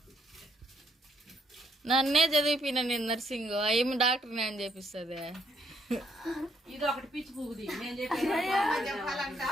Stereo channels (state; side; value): normal; both; correlation 0.71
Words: నన్నే చదివిపోయినా నేను నర్సింగ్ ఏమి డాక్టర్ నేను చేపిస్తుంది ఇది ఒకటి పిచ్చి పువ్వుది